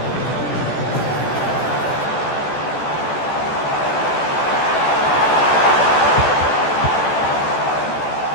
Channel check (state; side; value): late; right; 14 ms